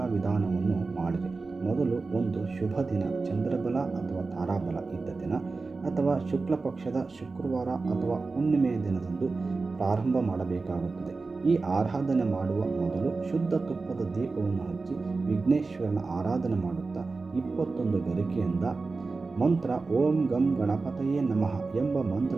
ವಿಧಾನವನ್ನು ಮಾಡಿರಿ. ಮೊದಲು ಒಂದು ಶುಭ ದಿನ, ಚಂದ್ರಬಲ ಅಥವಾ ತಾರಾಬಲ ಇದ್ದ ದಿನ ಅಥವಾ ಶುಕ್ಲ ಪಕ್ಷದ ಶುಕ್ರವಾರ ಅಥವಾ ಹುಣ್ಣಿಮೆಯ ದಿನದಂದು ಪ್ರಾರಂಭ ಮಾಡಬೇಕಾಗುತ್ತದೆ. ಈ ಆರಾಧನೆ ಮಾಡುವ ಮೊದಲು ಶುದ್ಧ ತುಪ್ಪದ ದೀಪವನ್ನು ಹಚ್ಚಿ ವಿಘ್ನೇಶ್ವರನ ಆರಾಧನೆ ಮಾಡುತ್ತಾ 21 ಗರಿಕೆಯಿಂದ ಮಂತ್ರ ಓಂ ಗಂ ಗಣಪತಯೇ ನಮಃ ಎಂಬ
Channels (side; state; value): left; quieter; 3.9 dB